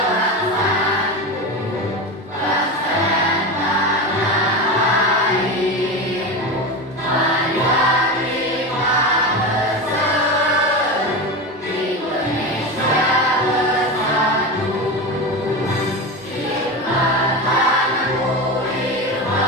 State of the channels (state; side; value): normal; both; correlation 0.22